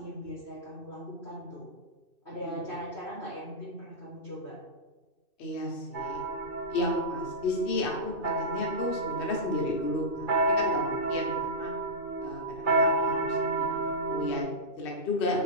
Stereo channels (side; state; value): right; late; 2.6 ms